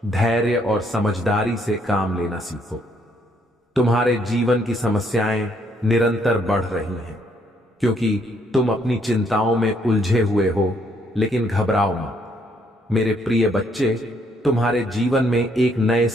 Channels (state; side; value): normal; both; correlation 0.70